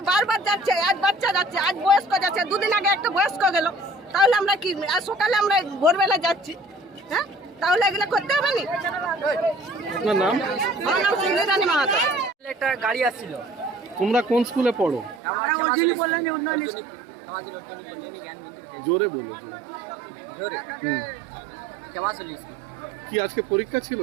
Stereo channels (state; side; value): drops out; left; at 15.2 s